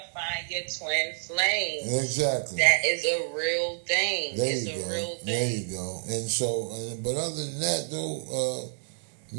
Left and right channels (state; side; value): silent; left; 59 dB below the other